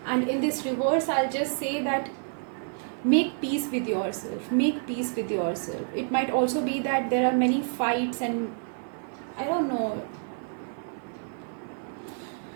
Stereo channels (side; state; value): left; silent; 56 dB below the other